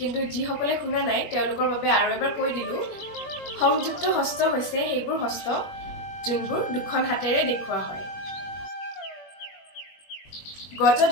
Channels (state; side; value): late; right; 21 ms